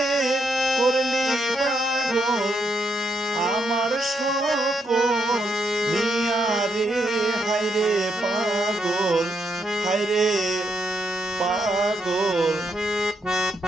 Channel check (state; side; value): normal; both; correlation 0.79